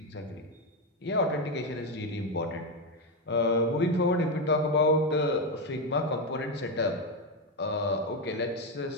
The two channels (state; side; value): normal; both; correlation 0.08